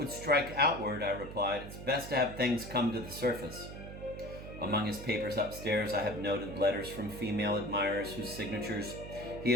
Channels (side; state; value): right; noise; hum, 11 dB below the sound